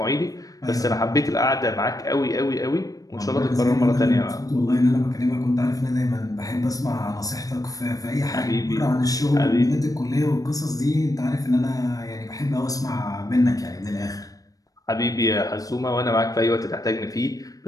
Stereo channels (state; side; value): late; right; 0.17 ms